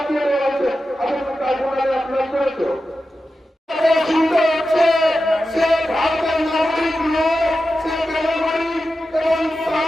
দিয়ে দেওয়া হয়েছে। আপনার কার্ড ভোটারে অ্যাপ্লাই করেছো? চিন্তা হচ্ছে সে ভারতের নাগরিক নয়, সে বেনাগরিক এবং তার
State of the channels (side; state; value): both; normal; correlation 0.92